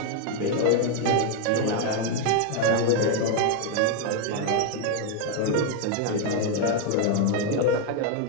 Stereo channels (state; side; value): different; both; correlation 0.01